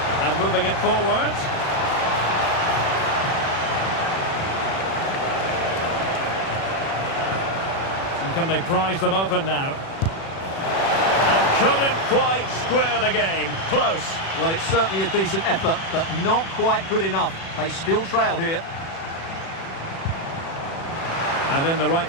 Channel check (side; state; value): right; late; 36 ms